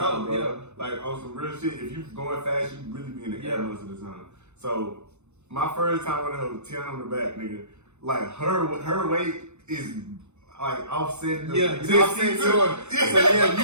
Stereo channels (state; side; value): late; left; 0.82 ms